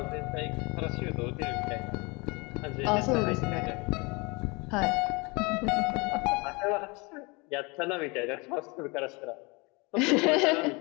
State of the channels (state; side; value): quieter; right; 27.8 dB